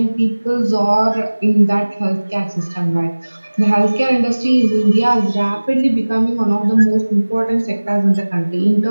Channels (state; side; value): inverted; both; correlation -1.00